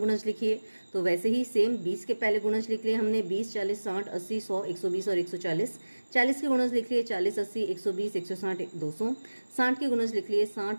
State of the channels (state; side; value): inverted; both; correlation -1.00